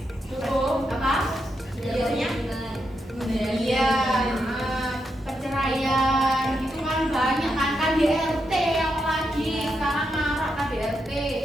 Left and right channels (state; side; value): normal; both; correlation 0.83